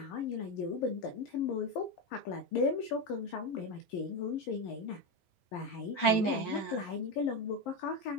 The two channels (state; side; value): late; right; 10 ms